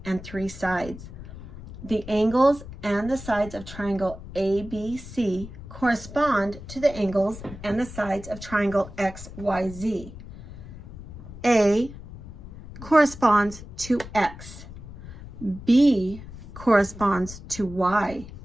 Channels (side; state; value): left; noise; rumble, 14 dB below the sound